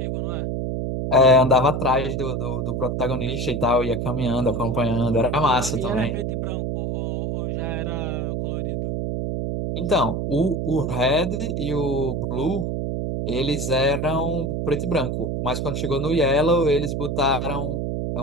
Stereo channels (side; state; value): right; noise; hum, 1 dB below the sound